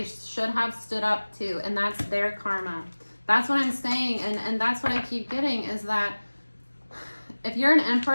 should have stood up to, and that's their karma. That's what I'm saying, and that's what I keep getting, is that if you're an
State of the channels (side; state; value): both; inverted; correlation -1.00